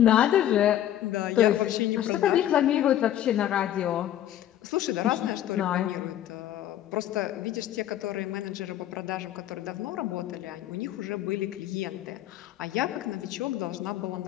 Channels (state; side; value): quieter; right; 11.9 dB